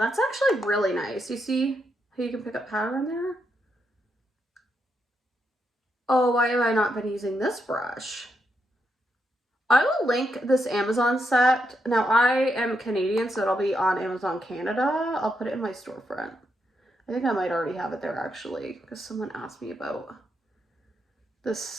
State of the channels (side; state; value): both; normal; correlation 0.81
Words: actually really nice. You see how you can pick up powder in there? Oh, why have I not been using this brush? I will link this Amazon set. Now, I am Canadian, so it'll be on Amazon Canada. I'll put it in my storefront. I think I might already have it there, actually, because someone asked me about this